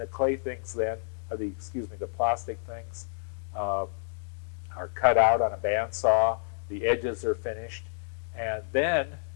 clay things then, the plastic things, are cut out on a bandsaw. The edges are finished, and then,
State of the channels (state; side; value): silent; right; digital silence